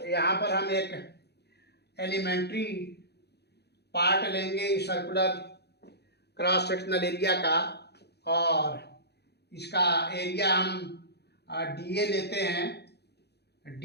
यहाँ पर हम एक एलिमेंट्री पार्ट लेंगे इस सर्कुलर क्रॉस सेक्शनल एरिया का, और इसका एरिया हम डीए लेते हैं।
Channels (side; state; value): right; late; 0.48 ms